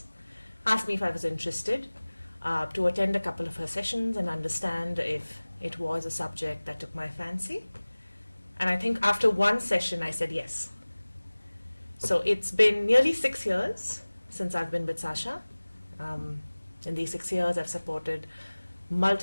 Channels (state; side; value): inverted; both; correlation -1.00